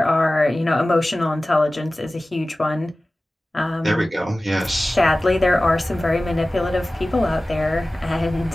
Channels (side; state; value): both; normal; correlation 0.97